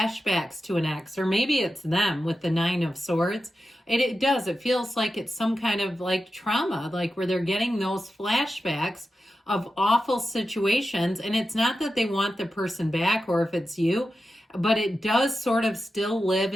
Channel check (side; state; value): both; normal; correlation 0.91